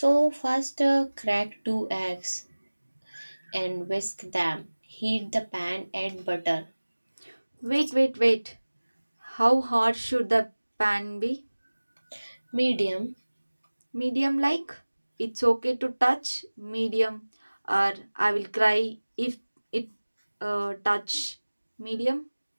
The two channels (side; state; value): both; inverted; correlation -1.00